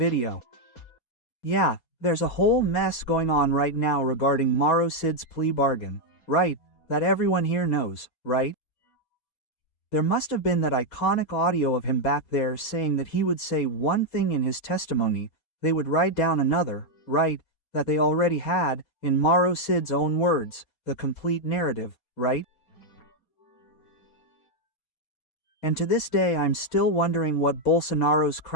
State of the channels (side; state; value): right; late; 6.3 ms